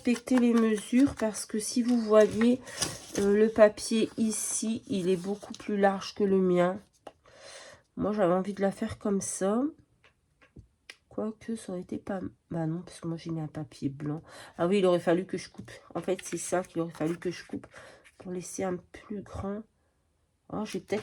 les mesures parce que si vous voyez le papier ici, il est beaucoup plus large que le mien. Moi, j'avais envie de la faire comme ça. Quoique, ça aurait été pas... Bah non, parce que moi, j'ai mis un papier blanc. Ah oui, il aurait fallu que je coupe. En fait, c'est ça qu'il aurait fallu que je coupe pour laisser un plus grand. Oh, je vais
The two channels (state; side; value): identical; both; correlation 1.00